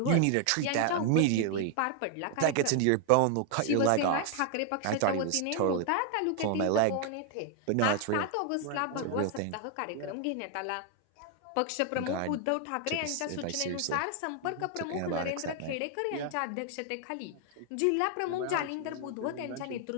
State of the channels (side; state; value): both; different; correlation 0.00